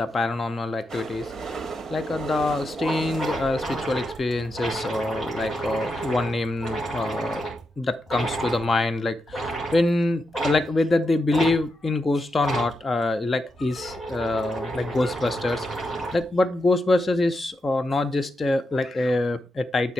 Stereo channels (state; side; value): normal; both; correlation 0.85